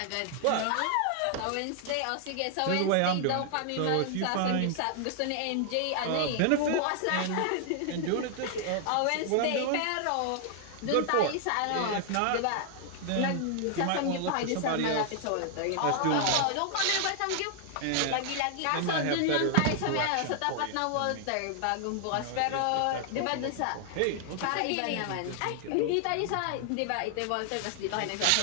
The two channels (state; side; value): different; both; correlation 0.00